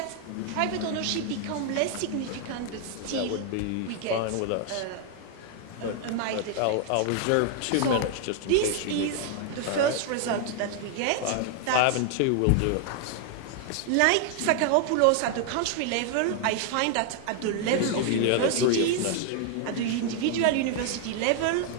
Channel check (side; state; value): both; different; correlation 0.00